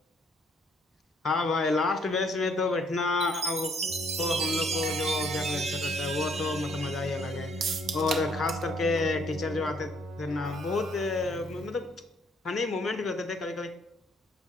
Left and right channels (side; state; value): both; normal; correlation 0.65